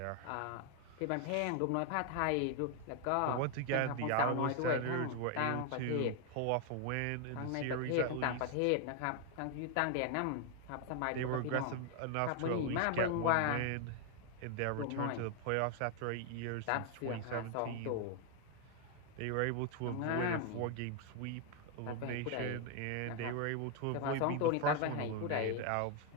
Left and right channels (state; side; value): different; both; correlation 0.00